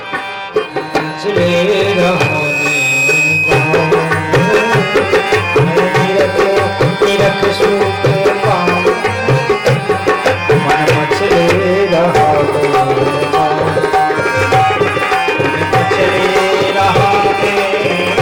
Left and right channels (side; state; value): both; identical; correlation 1.00